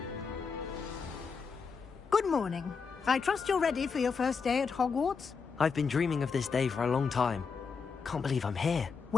Good morning. I trust you're ready for your first day at Hogwarts? I've been dreaming of this day for a long time. Can't believe I'm here.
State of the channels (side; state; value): right; quieter; 5.4 dB